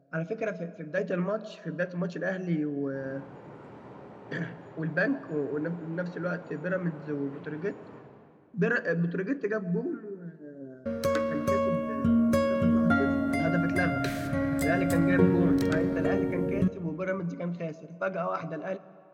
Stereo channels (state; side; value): identical; both; correlation 1.00